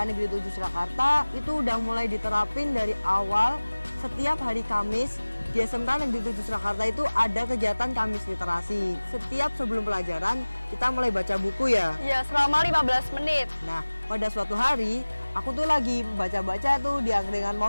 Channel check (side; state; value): both; inverted; correlation -1.00